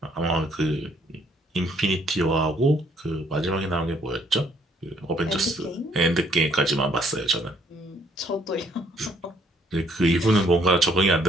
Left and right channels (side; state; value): both; normal; correlation 0.66